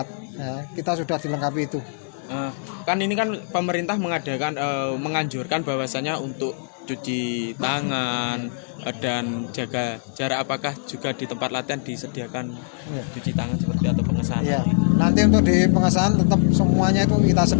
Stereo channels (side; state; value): right; silent; digital silence